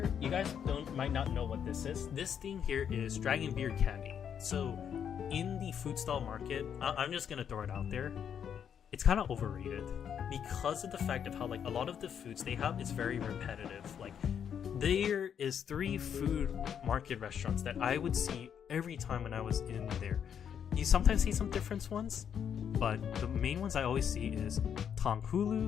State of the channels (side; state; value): right; quieter; 8.2 dB